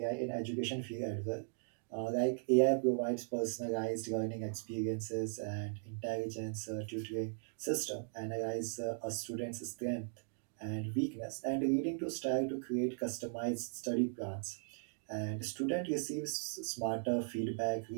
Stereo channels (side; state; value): left; silent; digital silence